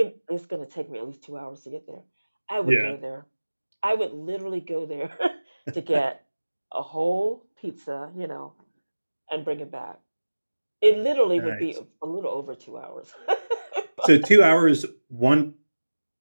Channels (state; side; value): inverted; both; correlation -1.00